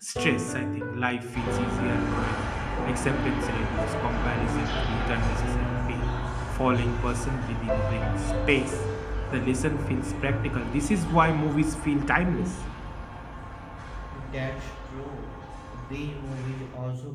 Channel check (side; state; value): both; identical; correlation 1.00